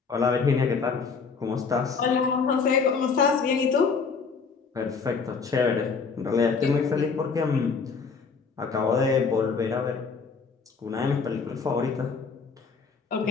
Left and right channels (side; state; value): right; quieter; 5.2 dB